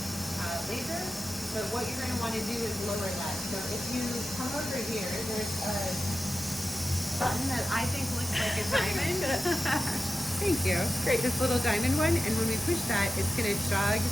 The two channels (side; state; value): both; normal; correlation 0.92